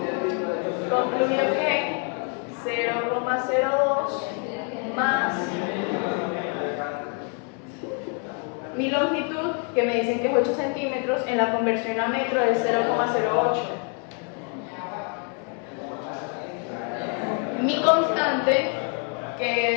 Concluyo que 0,02 más mi longitud, que me dicen que es 8 centímetros, en la conversión a metro es 0,08. Mi constante,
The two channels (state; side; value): quieter; right; 38.9 dB